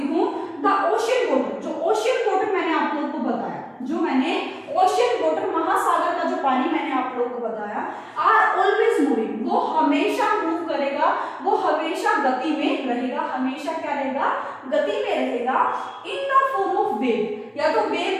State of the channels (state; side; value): identical; both; correlation 1.00